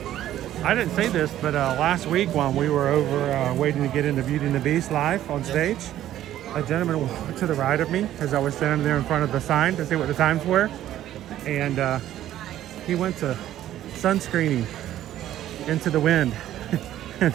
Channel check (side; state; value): left; quieter; 12.6 dB